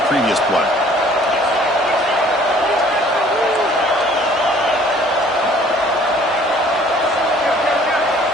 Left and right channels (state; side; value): normal; both; correlation 0.55